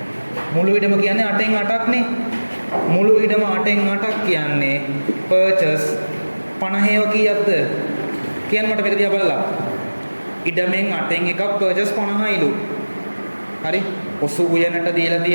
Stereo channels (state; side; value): inverted; both; correlation -1.00